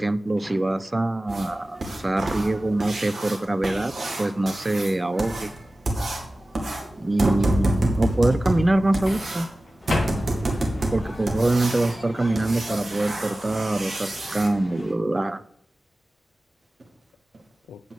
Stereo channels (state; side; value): normal; both; correlation 0.96